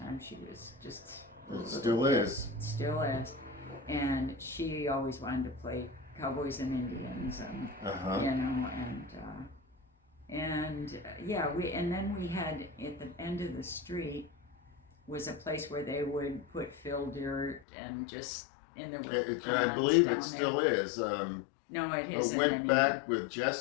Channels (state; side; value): drops out; right; at 17.6 s